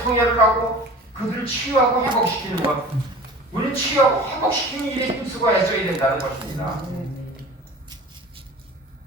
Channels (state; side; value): normal; both; correlation 0.40